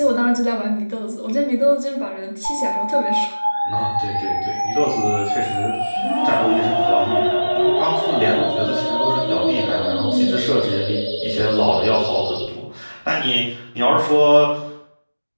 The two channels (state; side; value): inverted; both; correlation -1.00